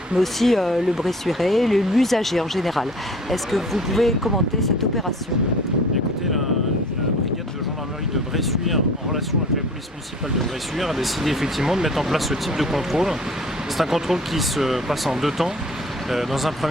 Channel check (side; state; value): both; normal; correlation 0.47